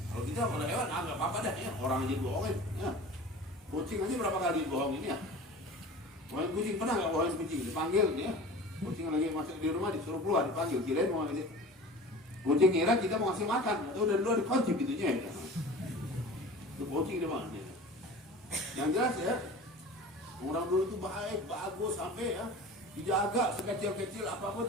Kalau kita kalau hewan nggak apa-apa dah ya, orang aja dibohongin ya. Kucing aja berapa kali dibohongin ya. Bohongin kucing pernah nggak bohongin kucing? Dipanggil ya. Kucing lagi masuk di rumah disuruh keluar dipanggil. Kirain mau ngasih. Kucing ngira kita mau ngasih makan. Atau udah luar dikunci pintunya ya. Itu kucing dia bang. Yang jelas ya. Orang dulu itu baik, bagus sampai ya dijaga sekecil-kecil apapun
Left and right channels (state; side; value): normal; both; correlation 0.39